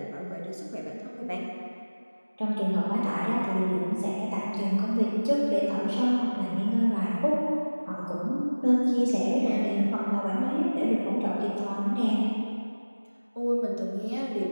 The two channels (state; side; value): inverted; both; correlation -1.00